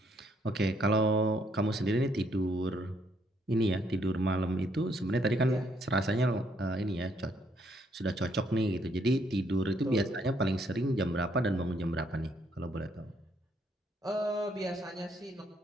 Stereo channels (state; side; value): normal; both; correlation 0.70